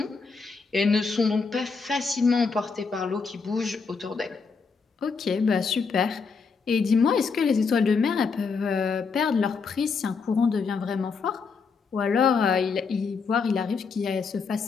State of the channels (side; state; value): right; quieter; 5.0 dB